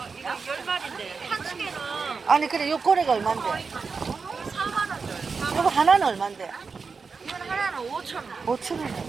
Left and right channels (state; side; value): quieter; left; 5.0 dB